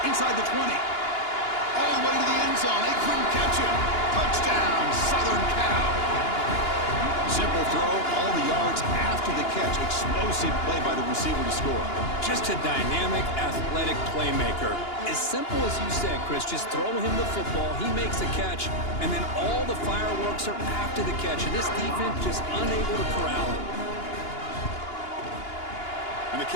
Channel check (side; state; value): right; late; 2.9 ms